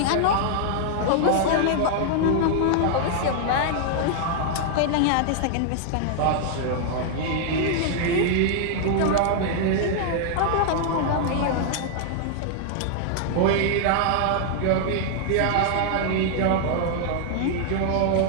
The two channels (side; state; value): both; different; correlation -0.01